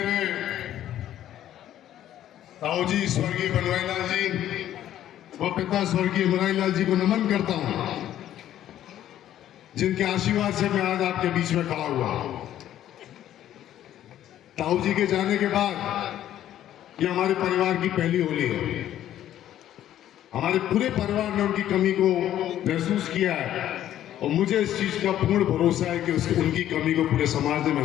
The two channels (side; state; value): right; quieter; 11.9 dB